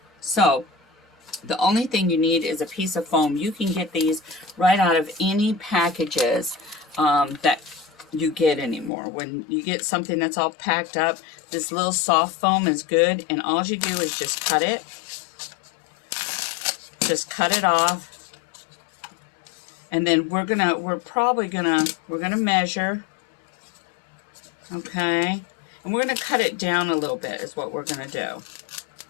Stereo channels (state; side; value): drops out; right; at 8.9 s